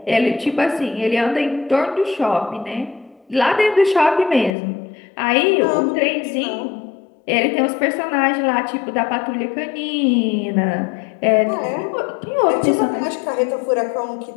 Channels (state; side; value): drops out; right; at 4.5 s